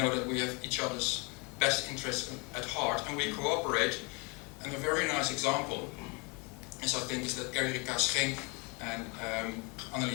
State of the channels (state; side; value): quieter; right; 30.9 dB